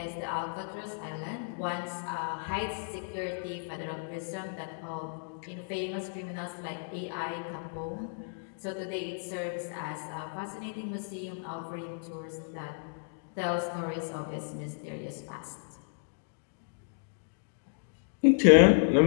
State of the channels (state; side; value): silent; right; digital silence